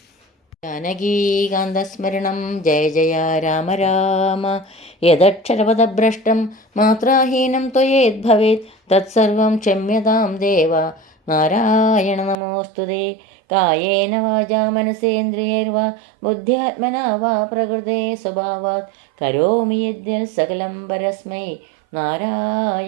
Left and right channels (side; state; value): left; drops out; at 12.4 s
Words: ജാനകീകാന്തസ്മരണം. ജയ ജയ രാമ രാമ. യദക്ഷരപദഭ്രഷ്ടം മാത്രാഹീനം ത്വയേദ്ഭവേത് തത്സർവം ക്ഷമ്യതാം ദേവ. നാരായണ നമോസ്തുതേ. കായേന വാചാ മനസേന്ദ്രിയൈർവാ ബുദ്ധ്യാത്മനാ വാ പ്രകൃതേ സ്വഭാവാത് കരോമി യദ്യൽ സകലം പരസ്മൈ